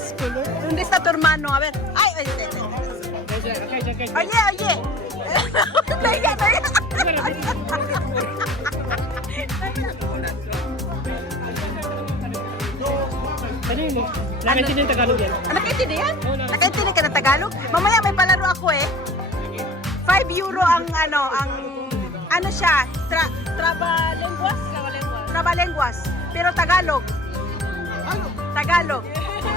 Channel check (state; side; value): normal; both; correlation 0.44